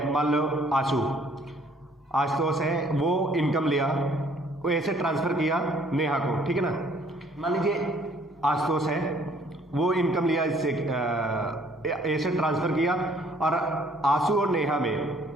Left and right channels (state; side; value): normal; both; correlation 0.60